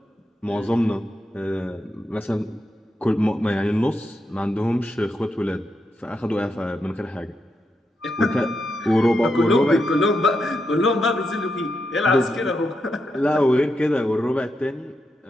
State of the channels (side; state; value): both; normal; correlation 0.84